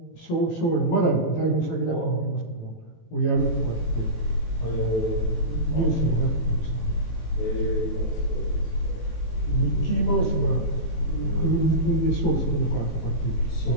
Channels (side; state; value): right; late; 18 ms